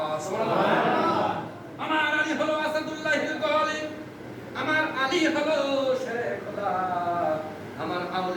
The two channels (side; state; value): both; identical; correlation 1.00